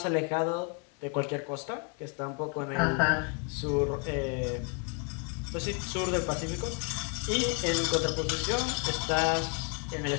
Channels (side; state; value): right; quieter; 34.9 dB